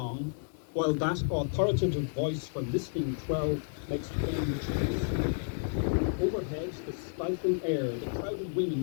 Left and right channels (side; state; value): right; silent; digital silence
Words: while that authoritative voice from listening 12 makes plain choice. Overhead, the stifling air, the crowded